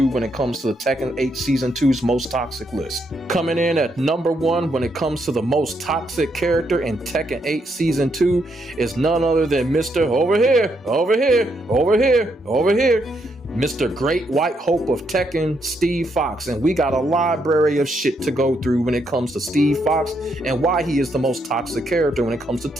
when it comes to the Tekken 8 Season 2's most toxic list. Coming in at number 1 when it comes to the most toxic character in Tekken 8 Season 2 is none other than Mr. Over here, Mr. Great White Hope of Tekken, Steve Fox. And we got a library of shit to go through when it comes to Steve Fox and why he is the most toxic character when it comes to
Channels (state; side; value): normal; both; correlation 0.77